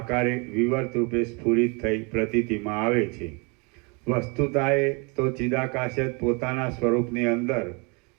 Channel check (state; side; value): quieter; left; 31.2 dB